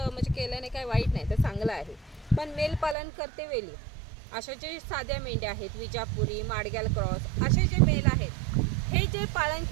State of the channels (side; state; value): left; drops out; at 3.0 s